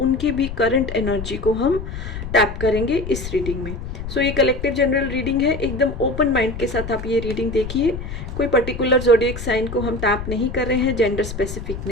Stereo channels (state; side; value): noise; left; rumble, 8 dB below the sound